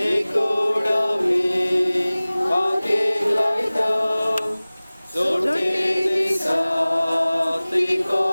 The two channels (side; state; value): both; inverted; correlation -0.99